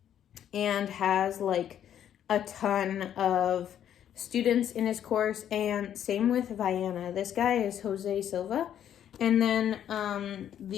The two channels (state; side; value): quieter; right; 10.1 dB